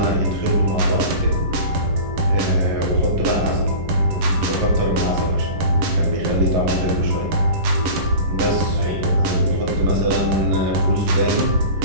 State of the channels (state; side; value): late; left; 11 ms